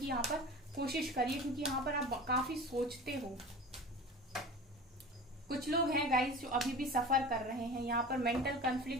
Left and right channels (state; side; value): normal; both; correlation 0.36